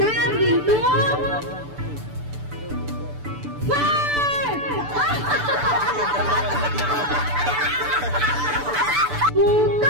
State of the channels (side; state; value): left; late; 6.9 ms